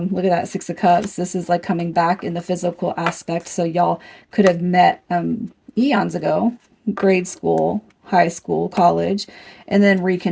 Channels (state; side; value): identical; both; correlation 1.00